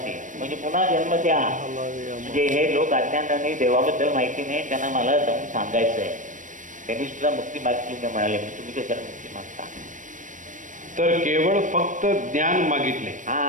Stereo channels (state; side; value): late; left; 0.37 ms